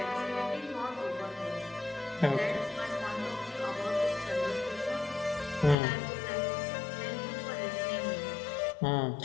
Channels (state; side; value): drops out; right; at 5.8 s